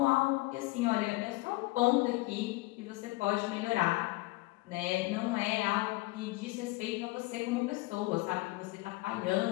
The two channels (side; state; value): right; quieter; 21.3 dB